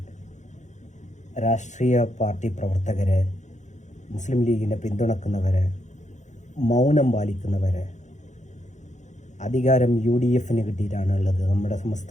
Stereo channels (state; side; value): late; right; 0.35 ms